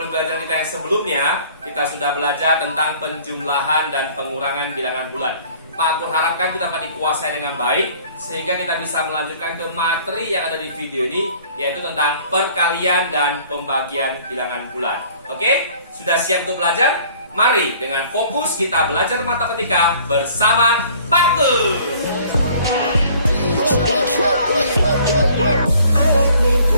kita yang sebelumnya, kita sudah belajar tentang penjumlahan dan pengurangan bilangan bulan. Pak Kur harapkan kita dapat dikuasai dengan baik, sehingga kita bisa melanjutkan ke materi yang ada di video ini, yaitu tentang perkalian dan pembagian bilangan bulan. Oke, sudah siap untuk belajar? Mari dengan fokus kita belajar matematika bersama Pak Kur.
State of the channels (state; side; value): inverted; both; correlation -0.54